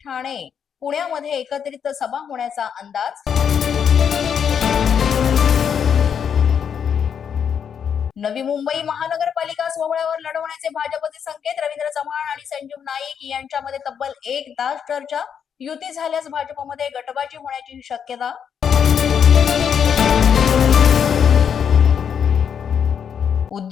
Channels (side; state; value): right; quieter; 7.7 dB